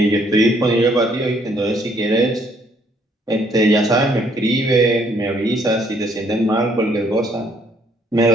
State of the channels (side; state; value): both; normal; correlation 0.66